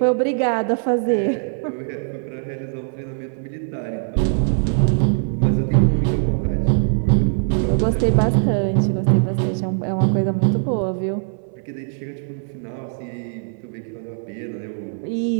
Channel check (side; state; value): left; silent; 62 dB below the other